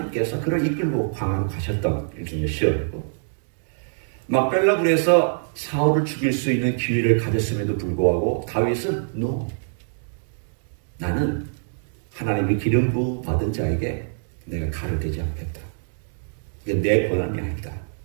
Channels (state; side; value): silent; left; digital silence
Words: 그를 이끌고 광야로 가셨던 일종의 시험이고 막벨라굴에서 사울을 죽일 수 있는 기회를 가졌음에도 불구하고 다윗은 나는 하나님이 기름 부어 받은 자에게 내가 칼을 대지 않겠다. 이게 내 권한이 아니다.